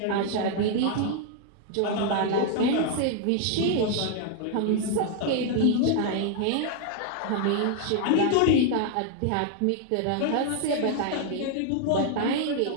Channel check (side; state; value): both; different; correlation 0.00